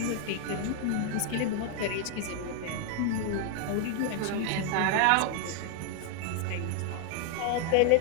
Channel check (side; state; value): both; different; correlation 0.00